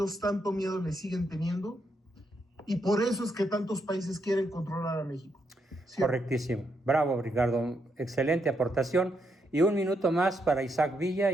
tanto miedo le siguen teniendo y por eso es que tantos países quieren controlar a México. ¿Sí? Correctísimo. Bravo, Ricardo. Excelente aportación. Y un minuto más para Isaac Villa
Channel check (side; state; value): both; normal; correlation 0.80